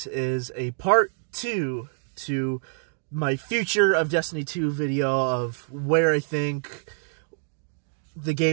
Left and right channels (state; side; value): silent; left; 61 dB below the other